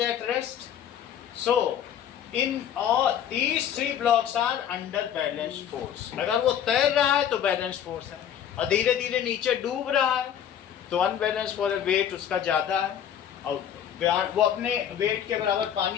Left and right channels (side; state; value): right; quieter; 9.4 dB